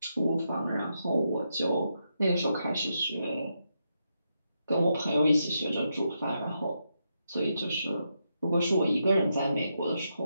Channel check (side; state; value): both; inverted; correlation -0.83